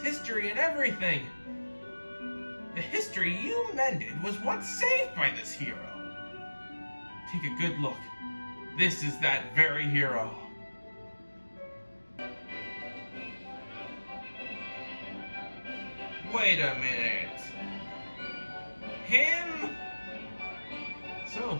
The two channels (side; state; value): both; inverted; correlation -1.00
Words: and everything. The history you mended was once saved by this hero. Take a good look. This is that very hero. Wait a minute. Him? So,